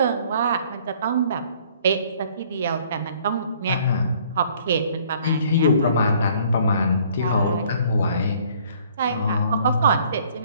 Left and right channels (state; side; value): inverted; both; correlation -0.59